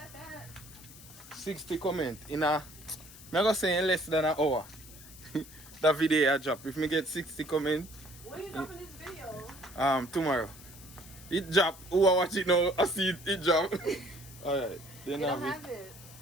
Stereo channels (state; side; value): noise; left; hiss, 18 dB below the sound